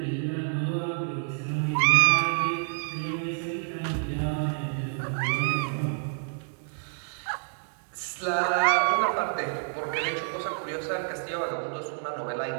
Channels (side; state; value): left; silent; digital silence